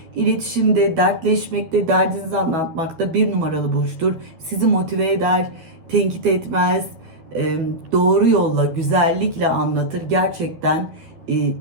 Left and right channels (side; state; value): left; late; 12 ms